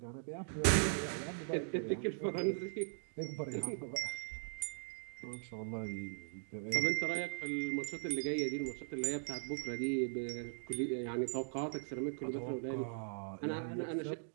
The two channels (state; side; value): silent; left; digital silence